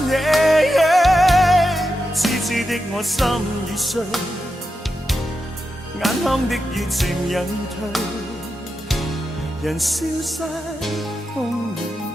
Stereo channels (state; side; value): normal; both; correlation 0.88